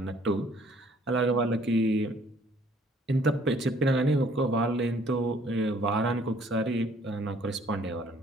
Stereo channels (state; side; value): normal; both; correlation 0.60